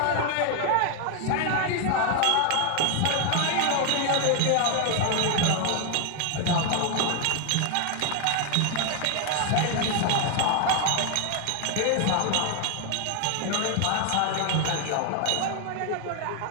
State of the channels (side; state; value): both; different; correlation 0.00